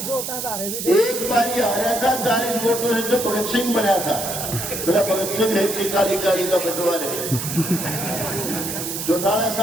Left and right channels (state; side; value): noise; right; hiss, 5 dB below the sound